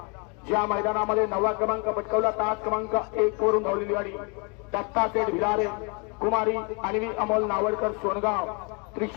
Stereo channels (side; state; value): right; quieter; 33.8 dB